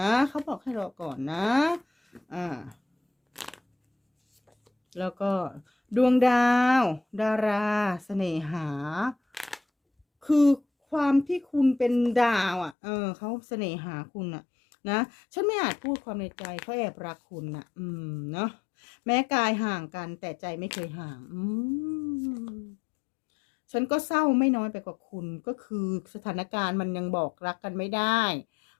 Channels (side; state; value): right; drops out; at 12.8 s